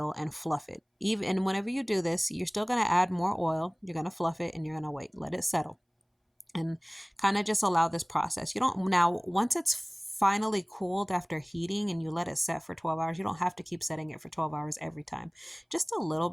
and fluff it. Even and whenever you do this, you're still going to add more oil, you're going to fluff it, and you're going to wait, let it settle, and kind of just allow this process. You don't Now, once it's finally cooled after heating and you let it set for 12 hours, you don't have to keep setting it for 12 hours every time. Just a little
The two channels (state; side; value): identical; both; correlation 1.00